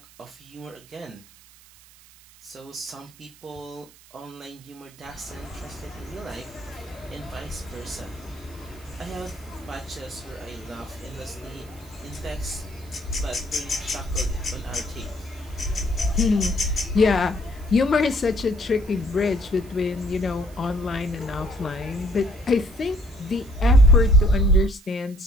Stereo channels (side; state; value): right; noise; hiss, 24 dB below the sound